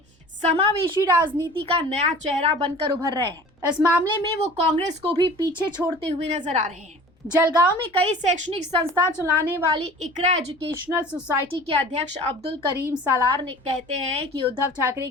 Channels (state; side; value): normal; both; correlation 0.43